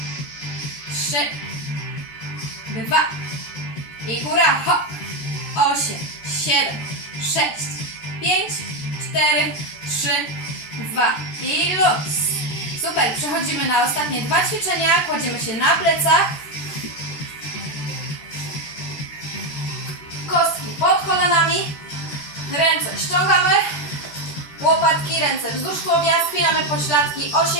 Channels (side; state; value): right; late; 14 ms